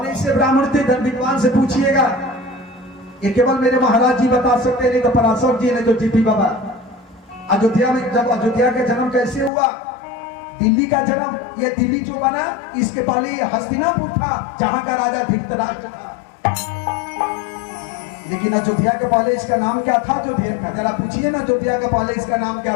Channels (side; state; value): right; drops out; at 9.5 s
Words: ऐसे ब्राह्मण थे? धन विद्वान से पूछिएगा। ये केवल मेरे महाराज जी बता सकते, नहीं तो पराशर जी, नहीं तो जीपी बाबा। अयोध्या में जब अयोध्या का जन्म कैसे हुआ? दिल्ली का जन्म, ये दिल्ली जो बना इसके पहले ये हस्तिनापुर था जहां का राजा धृतराष्ट्र था। लेकिन अयोध्या के पहले इसका नाम क्या था? अयोध्या का जरा पूछिए ना, अयोध्या के पहले इसका नाम